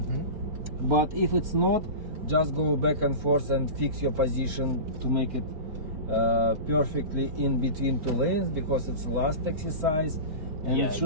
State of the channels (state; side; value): late; left; 4.4 ms